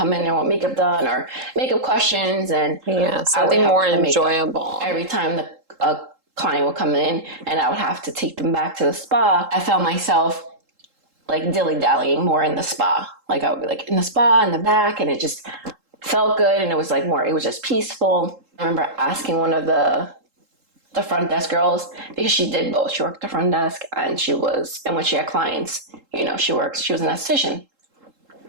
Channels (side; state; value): left; late; 3.7 ms